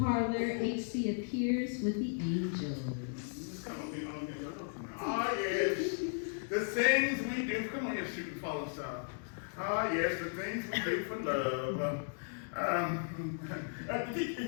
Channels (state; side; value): silent; right; digital silence